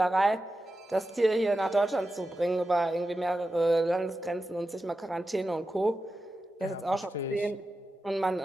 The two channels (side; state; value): both; normal; correlation 0.91